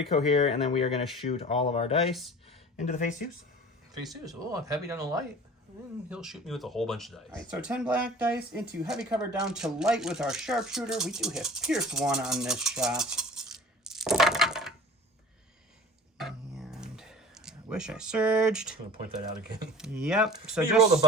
here, and then we are going to shoot all of our dice into the phase 2s. Phase 2s. Oh, I'm heavy down to light. And he'll shoot me with a whole bunch of dice. All right, so 10 black dice into heavy cover down to light with our sharpshooter. We do have Pierce 1 on this shot. And I wish I surged. I'm going to point that out again. Yep. So you rolled a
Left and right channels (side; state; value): both; normal; correlation 0.40